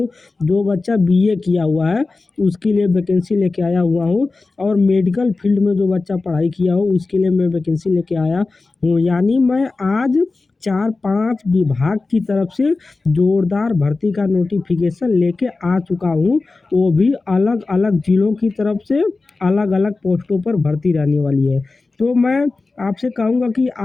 जो बच्चा बीए किया हुआ है उसके लिए वैकेंसी लेके आया हुआ हूँ। और मेडिकल फील्ड में जो बच्चा पढ़ाई किया हो उसके लिए मैं वैकेंसी लेके आया हूँ। यानी मैं आज 4-5 विभाग की तरफ से जोरदार भर्ती का नोटिफिकेशन लेके आ चुका हूँ। वो भी अलग अलग जिलों की तरफ से अलग अलग पोस्टों पर भर्ती रहने वाली है। तो मैं आपसे कहूँगा कि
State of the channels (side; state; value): right; quieter; 3.7 dB